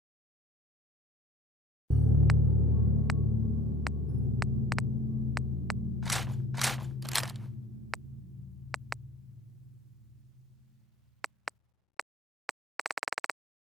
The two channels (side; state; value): both; normal; correlation 0.48